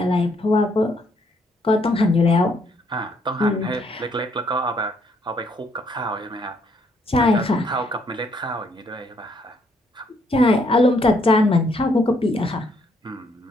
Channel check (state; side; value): normal; both; correlation 0.70